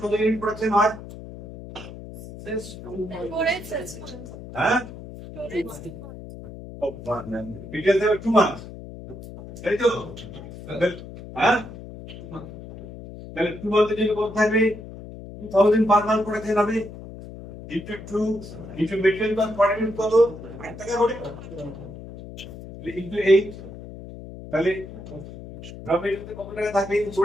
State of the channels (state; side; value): noise; left; hum, 13 dB below the sound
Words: কত ইউনিট প্রোডাকশন হয়? হ্যাঁ, মেটেরিয়াল দেবে 2 মান্থ, তাই তো? হ্যাঁ, তাহলে 2 মান্থের জন্য কত থাকবে? 2,000 পার মান্থ প্রোডাকশন হবে, into 2 into material cost per unit কত? 8 টাকা করে, into 8, তাহলে র মেটেরিয়াল কত টাকা থাকবে?